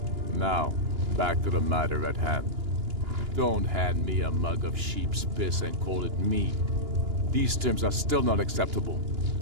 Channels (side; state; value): left; late; 2.9 ms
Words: Now, back to the matter at hand. Don't hand me a mug of sheep's piss and call it mead. These terms are still not acceptable.